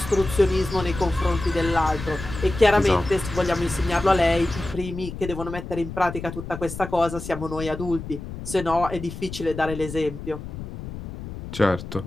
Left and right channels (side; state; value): left; noise; rumble, 10 dB below the sound